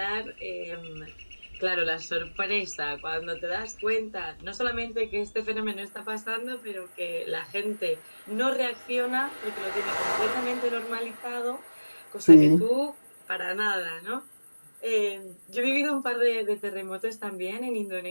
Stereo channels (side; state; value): both; inverted; correlation -1.00